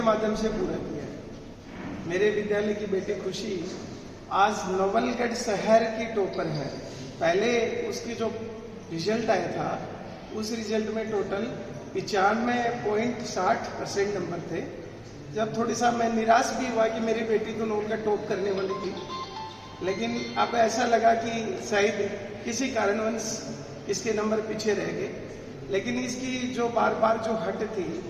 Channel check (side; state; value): both; identical; correlation 1.00